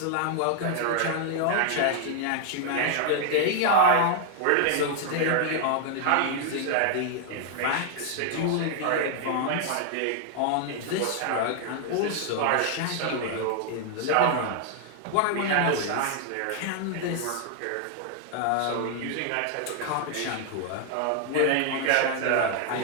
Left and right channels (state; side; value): different; both; correlation 0.00